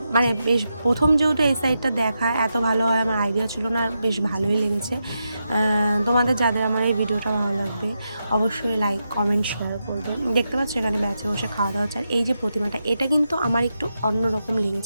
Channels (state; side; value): inverted; both; correlation -0.87